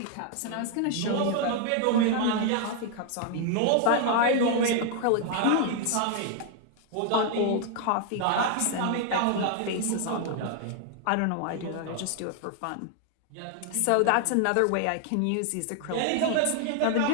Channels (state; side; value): different; both; correlation 0.00